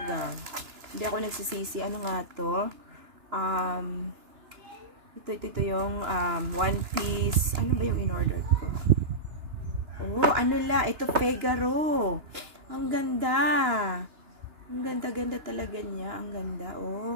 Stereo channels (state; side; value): late; left; 2.9 ms